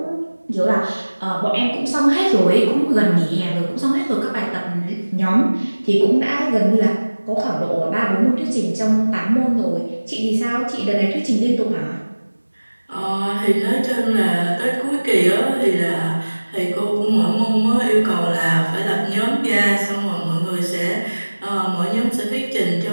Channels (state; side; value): inverted; both; correlation -1.00